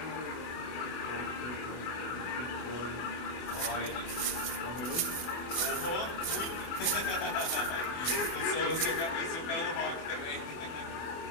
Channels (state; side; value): late; right; 24 ms